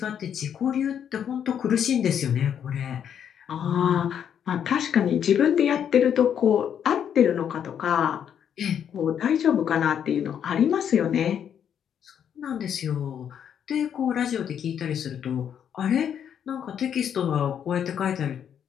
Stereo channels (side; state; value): right; quieter; 8.7 dB